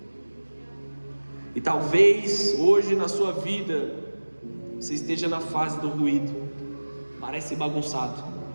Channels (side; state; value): both; inverted; correlation -1.00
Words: E talvez hoje na sua vida você esteja na fase do ruído. Parece bagunçado,